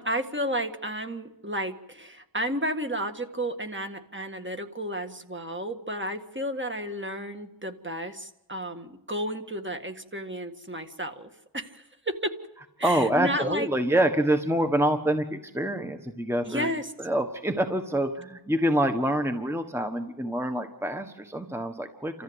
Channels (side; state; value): both; normal; correlation 0.53